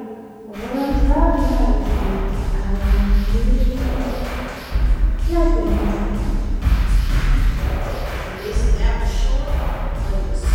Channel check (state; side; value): identical; both; correlation 1.00